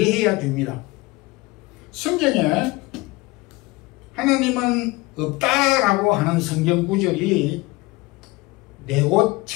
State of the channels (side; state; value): right; quieter; 22.2 dB